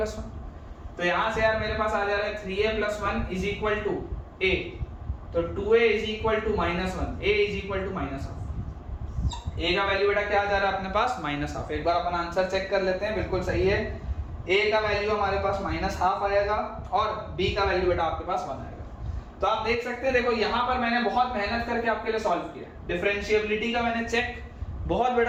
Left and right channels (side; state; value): both; identical; correlation 1.00